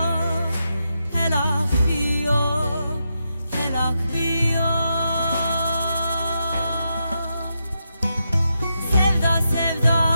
هلاک sevda sevda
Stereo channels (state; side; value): inverted; both; correlation -0.85